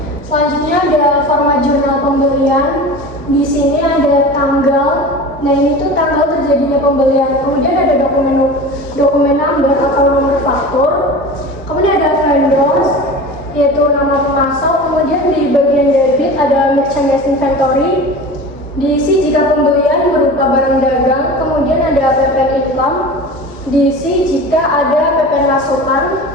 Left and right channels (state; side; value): normal; both; correlation 0.34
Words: Selanjutnya ada format jurnal pembelian. Di sini ada tanggal. Nah, ini tuh tanggal terjadinya pembelian. Kemudian ada dokumen number atau nomor faktur. Kemudian ada vendors, yaitu nama pemasok. Kemudian di bagian debit ada merchandise inventory. Diisi jika pembelian berupa barang dagang. Kemudian ada PPN income. Diisi jika ada PPN masukan.